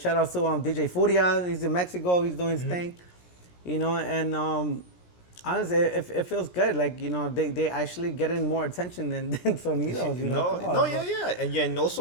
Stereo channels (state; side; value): late; right; 17 ms